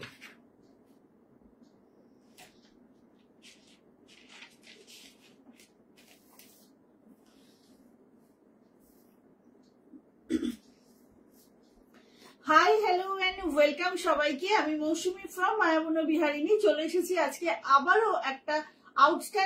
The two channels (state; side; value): identical; both; correlation 1.00